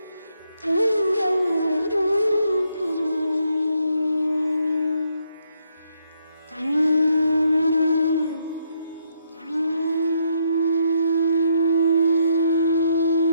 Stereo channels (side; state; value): both; inverted; correlation -0.74